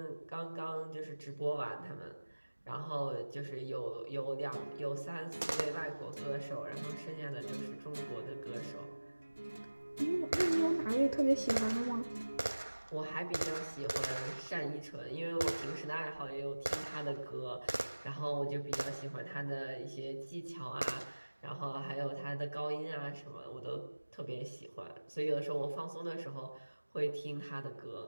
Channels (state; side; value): inverted; both; correlation -1.00